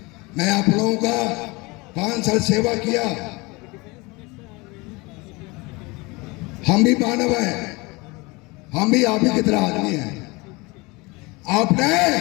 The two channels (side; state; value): right; quieter; 25.0 dB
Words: मैं आप लोगों का 5 साल सेवा किया, हम भी मानव हैं, हम भी आप ही की तरह आदमी हैं। आपने